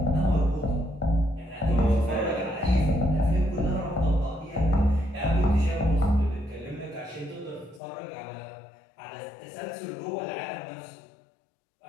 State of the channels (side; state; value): right; drops out; at 7.8 s